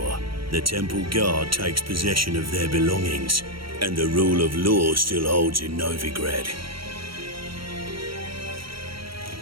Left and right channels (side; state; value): left; late; 0.74 ms